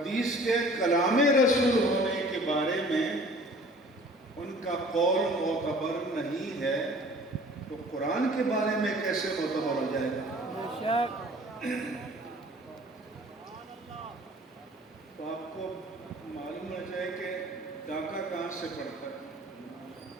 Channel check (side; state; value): both; normal; correlation 0.49